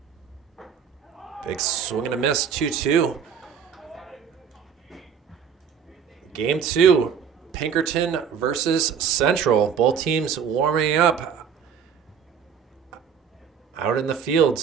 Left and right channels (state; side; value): quieter; left; 7.2 dB